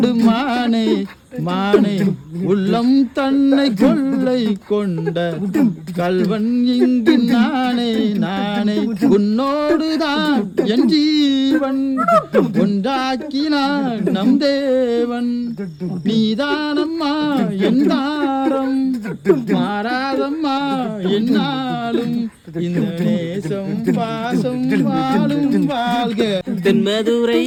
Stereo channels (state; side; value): identical; both; correlation 1.00